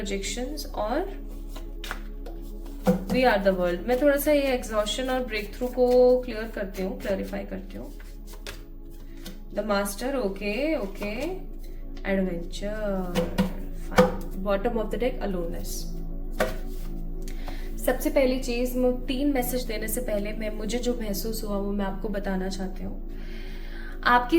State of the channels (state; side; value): identical; both; correlation 1.00